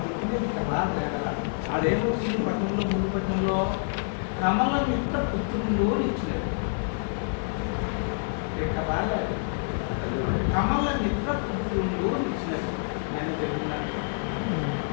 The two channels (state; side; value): silent; right; 57 dB below the other